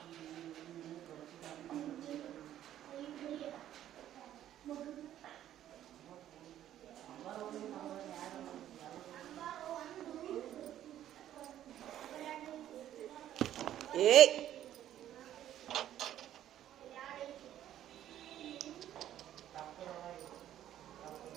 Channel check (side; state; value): left; quieter; 11.8 dB